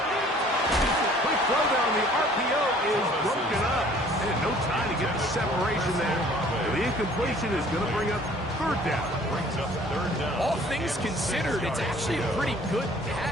Quick throw down, the RPO is broken up, and no time to get the separation there. The incompletion is going to bring up 3rd down. All things considered, it's actually a pretty good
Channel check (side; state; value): both; normal; correlation 0.54